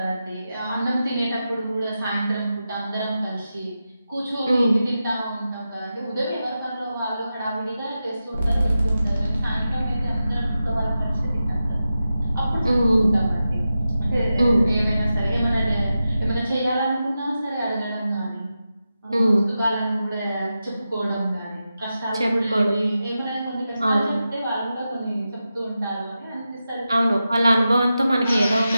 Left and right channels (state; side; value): inverted; both; correlation -0.91